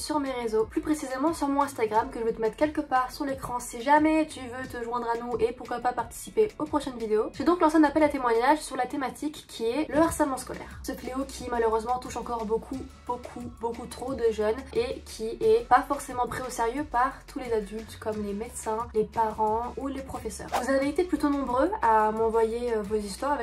mes réseaux, plus précisément sur mon Instagram que je vais te mettre quelque part sur l'écran si jamais tu veux te joindre à nous et pourquoi pas participer aux prochaines vidéos. J'ai donc lancé un appel à témoignages sur la thématique qui est le harcèlement scolaire. Ce fléau qui malheureusement touche encore beaucoup trop de jeunes et qui est pas forcément pris au sérieux par tous les adultes comme les médecins, les parents ou les professeurs. Vous avez été plutôt nombreux à m'envoyer vos histoires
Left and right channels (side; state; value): both; identical; correlation 1.00